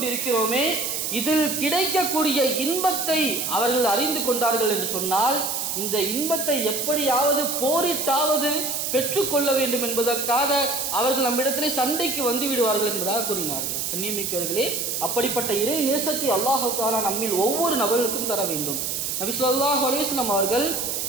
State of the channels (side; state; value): right; noise; hiss, 2 dB below the sound